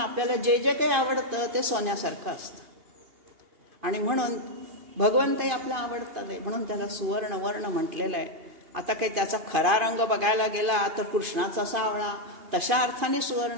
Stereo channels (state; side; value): late; left; 2.5 ms